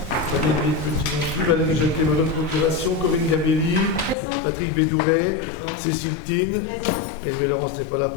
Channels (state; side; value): drops out; right; at 4.2 s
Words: Valérie Petit non plus, Valérie Jacquet me donne procuration, Corinne Gabelli, Patrick Bédouret, Cécile Tine, Hervé Laurence n'est pas là